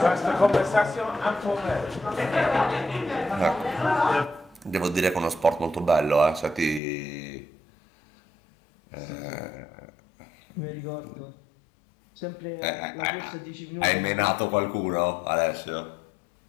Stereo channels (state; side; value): drops out; right; at 6.8 s